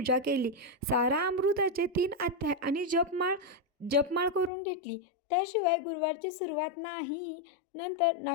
केली. सारा अमृताचे 3 अध्याय आणि जपमाळ करून घेतली. त्याशिवाय गुरुवारची सुरुवात नाही. नंतर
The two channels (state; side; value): drops out; right; at 4.5 s